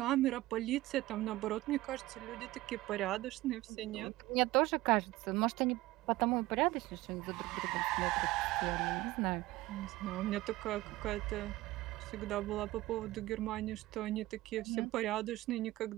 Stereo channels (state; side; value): quieter; left; 17.9 dB